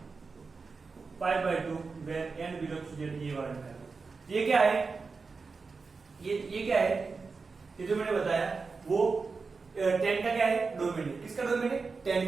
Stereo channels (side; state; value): left; quieter; 4.6 dB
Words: pi by 2 where n belongs to z, ये वाला निकाल दो। ये क्या है, ये क्या है, ये जो मैंने बताया वो 10 का क्या है, डोमेन है। किसका डोमेन है, 10